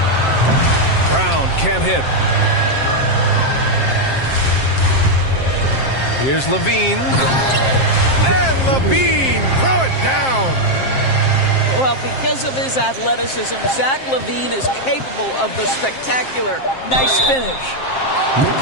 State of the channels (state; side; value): late; right; 7.6 ms